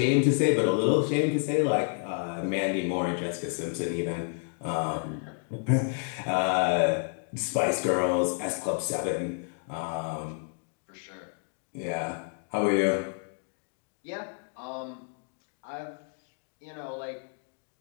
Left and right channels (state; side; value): silent; right; 58 dB below the other